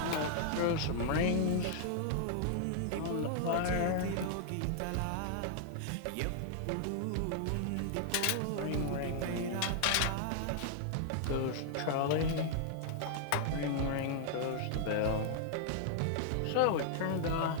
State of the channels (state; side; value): different; both; correlation -0.01